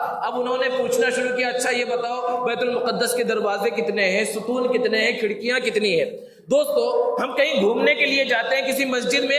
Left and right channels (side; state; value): both; identical; correlation 1.00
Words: اب انہوں نے پوچھنا شروع کیا اچھا یہ بتاؤ بیت المقدس کے دروازے کتنے ہیں، ستون کتنے ہیں، کھڑکیاں کتنی ہیں۔ دوستو، ہم کہیں گھومنے کے لیے جاتے ہیں کسی مسجد میں